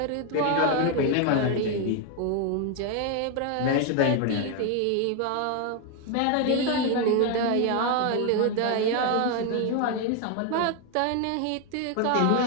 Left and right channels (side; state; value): both; different; correlation 0.01